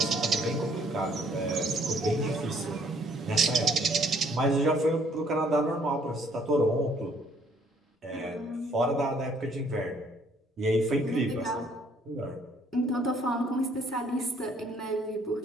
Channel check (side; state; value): both; normal; correlation 0.63